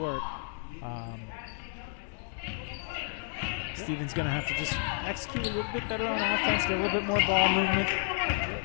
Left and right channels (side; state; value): right; silent; 57 dB below the other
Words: Stevens going to have to just execute a little bit better on offense, get a little bit more ball movement.